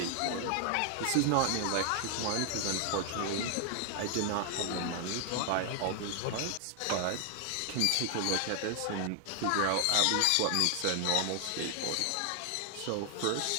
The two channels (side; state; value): both; different; correlation 0.00